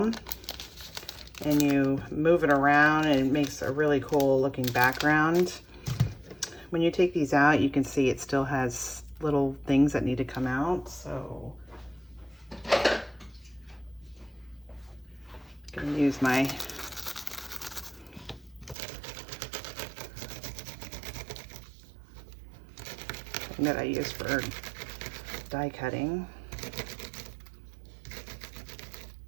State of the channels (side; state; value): left; drops out; at 18.8 s